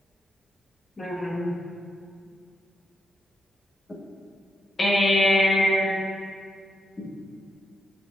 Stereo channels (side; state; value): both; normal; correlation 0.82